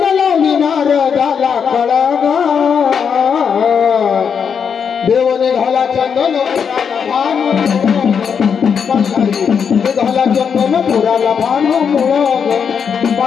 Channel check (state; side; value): quieter; right; 6.8 dB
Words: लावली नारदाला कळग देव निघाला चंदन निघाला चंदन पुराला भानू मुळग